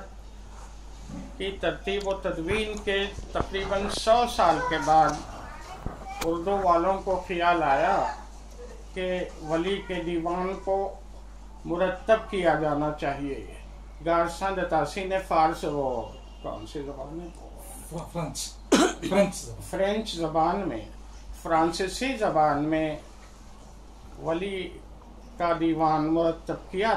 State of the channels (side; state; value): both; identical; correlation 1.00